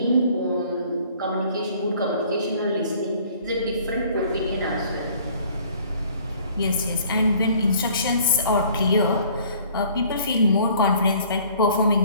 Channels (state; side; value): inverted; both; correlation -0.55